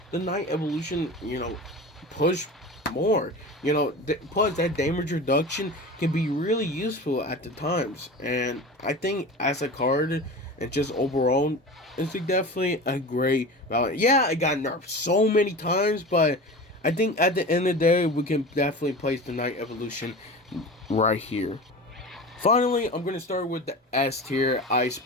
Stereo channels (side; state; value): both; normal; correlation 0.32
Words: the Night Evolution, push more. Plus that damage reduction can be really useful at the times. And I think as a card and just overall, it's definitely a great value. Yeah, it got nerfed so many times, but I think at the end of the day, we can definitely place the Night Evolution right here. Finally, I'm going to start with the S tier, Ice